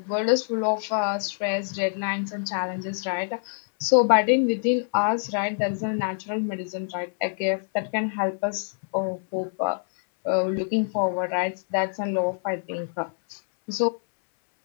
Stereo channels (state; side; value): silent; right; 61 dB below the other